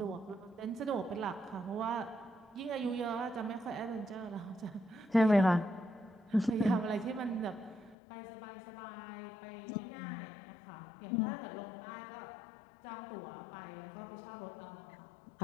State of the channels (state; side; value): drops out; right; at 8.0 s